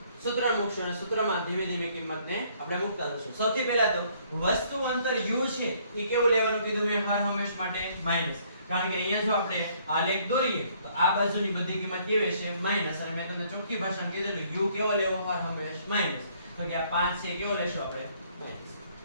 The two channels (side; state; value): both; inverted; correlation -0.64